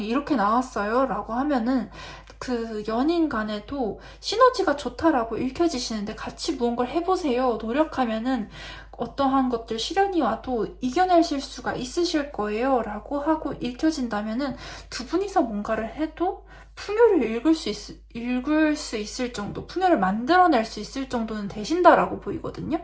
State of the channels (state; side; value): identical; both; correlation 1.00